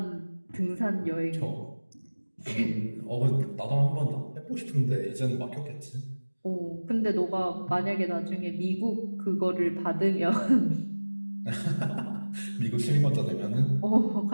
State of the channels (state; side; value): inverted; both; correlation -1.00